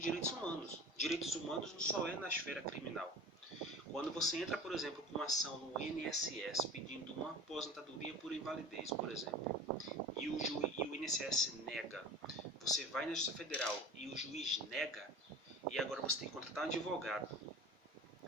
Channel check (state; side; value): normal; both; correlation 0.38